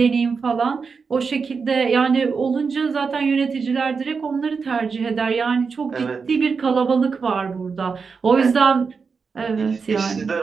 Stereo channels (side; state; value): left; quieter; 5.2 dB